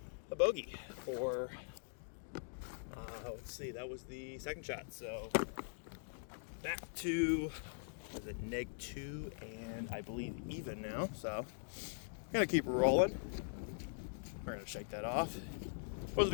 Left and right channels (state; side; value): silent; right; digital silence